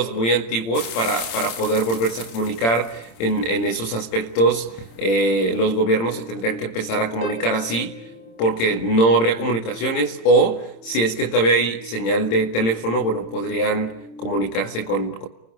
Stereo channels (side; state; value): right; late; 26 ms